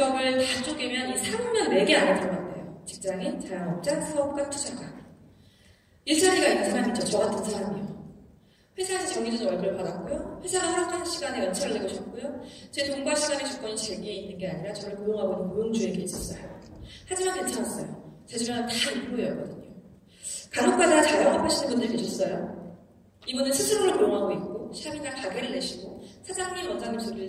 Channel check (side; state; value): both; identical; correlation 1.00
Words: 다 쪼개면 이 산업명 4개 안에 들어간대요. 직장인, 자영업자, 사업가, 투자가. 일자리가 있는 사람이죠. 저 같은 사람이요. 회사에서 정해진 월급을 받았고요. 회사가 허락하는 시간에 연차를 내고 싶고요. 제 돈과 시간의 주권이 제게 있는 게 아니라 저를 고용하고 있는 고용주에게 있었어요. 하지만 괜찮았어요. 제 주변은 다 인프로였거든요. 간혹가다 자영업 하시는 분들 계셨어요. 이분은 스스로를 고용하고 있고 샵이나 가게를 내시고 사장님, 원장님